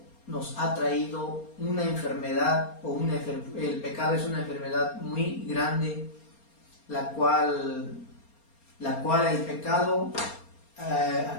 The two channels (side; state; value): right; late; 4.3 ms